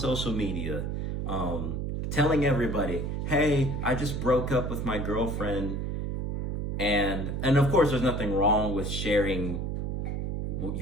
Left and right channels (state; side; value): noise; right; hum, 2 dB below the sound